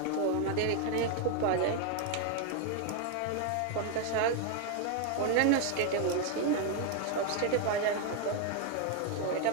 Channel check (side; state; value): both; different; correlation 0.01